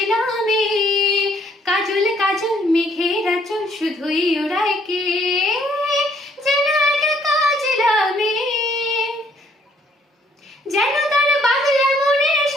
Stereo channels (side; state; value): both; normal; correlation 0.66